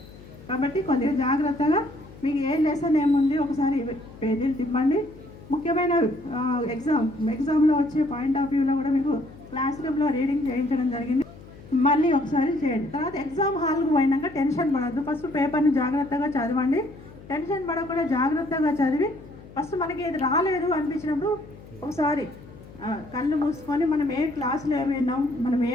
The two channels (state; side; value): noise; left; hum, 19 dB below the sound